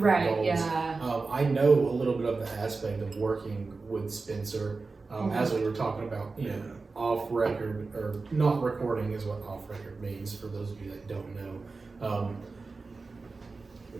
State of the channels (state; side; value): quieter; left; 4.0 dB